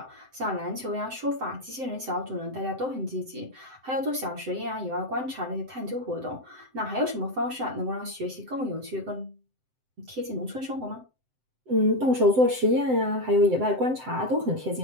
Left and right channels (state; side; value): late; left; 7.8 ms